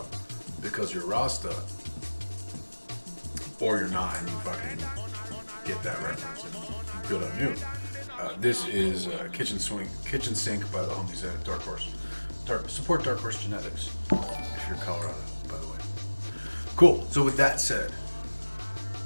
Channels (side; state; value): both; inverted; correlation -1.00